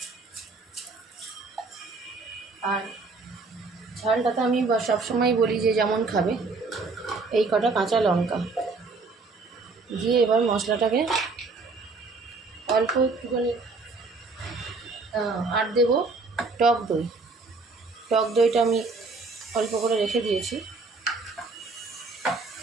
আর ঝালটা তো আমি সবসময় বলি যে যেমন খাবে, এই কটা কাঁচা লঙ্কা দিয়ে এবার মশলাটাকে অল্প একটুখানি আর দেবো টক দই। টক দইটা আমি অল্প করে রেখে দিয়েছি।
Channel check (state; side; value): quieter; left; 3.9 dB